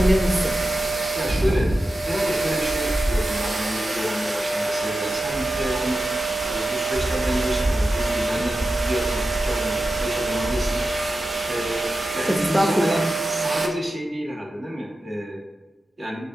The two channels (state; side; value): normal; both; correlation 0.92